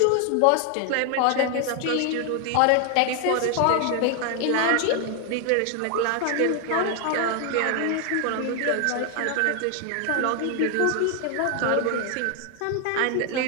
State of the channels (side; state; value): both; different; correlation 0.01